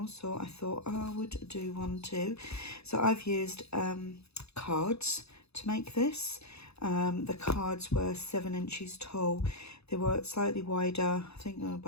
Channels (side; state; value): right; late; 0.79 ms